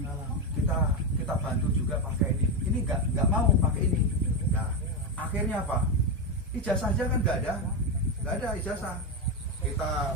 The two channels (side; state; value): both; normal; correlation 0.10